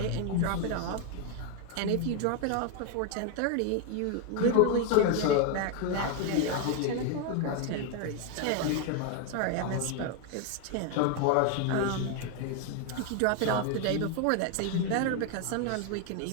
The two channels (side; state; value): both; different; correlation 0.01